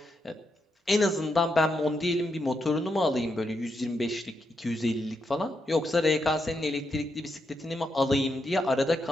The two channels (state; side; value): normal; both; correlation 0.82